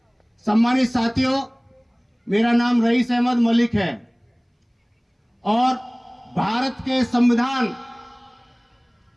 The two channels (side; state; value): both; identical; correlation 1.00